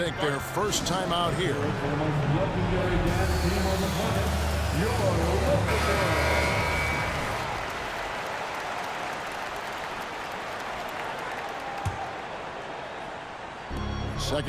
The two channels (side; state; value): both; identical; correlation 1.00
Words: their first time out here.